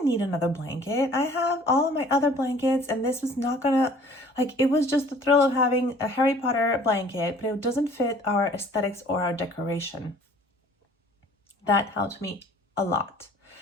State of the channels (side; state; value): both; normal; correlation 0.52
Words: need another blanket. I have all of my other blankets, and this was not gonna, like, it was just the thrill of having a Harry Potter blanket, but it doesn't fit our aesthetics or our decoration. That helped me a lot.